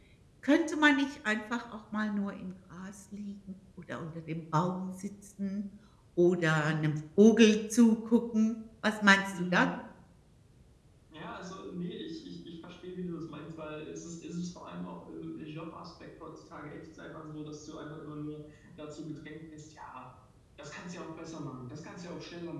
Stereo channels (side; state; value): both; identical; correlation 1.00